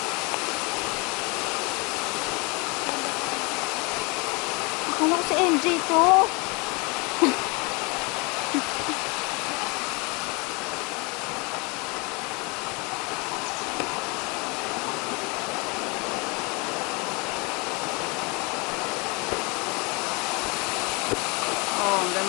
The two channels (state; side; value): quieter; right; 29.4 dB